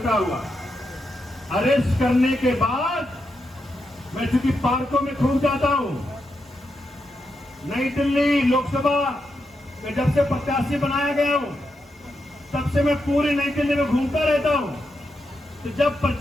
हुआ। अरेस्ट करने के बाद मैं चूंकि पार्कों में खूब जाता हूं, नई दिल्ली लोकसभा में जब से प्रत्याशी बनाया गया हूं, तब से मैं पूरी नई दिल्ली में घूमता रहता हूं। तो जब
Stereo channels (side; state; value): both; normal; correlation 0.85